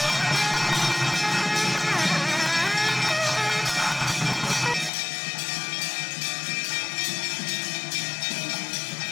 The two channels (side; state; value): right; drops out; at 4.9 s